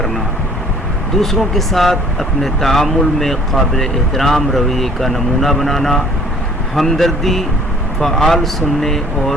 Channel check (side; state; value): both; normal; correlation 0.55